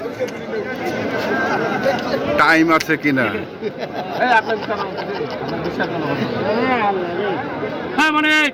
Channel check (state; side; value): identical; both; correlation 1.00